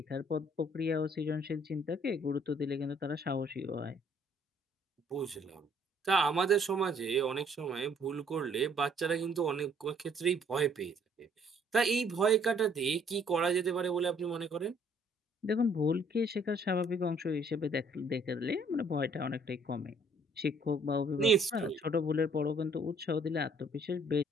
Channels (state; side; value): normal; both; correlation 0.62